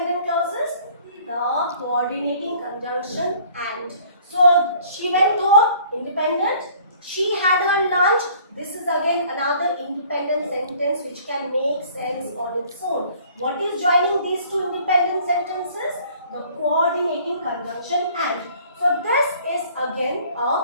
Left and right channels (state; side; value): inverted; both; correlation -0.54